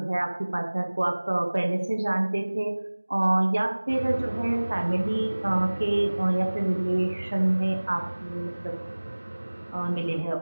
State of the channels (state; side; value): inverted; both; correlation -1.00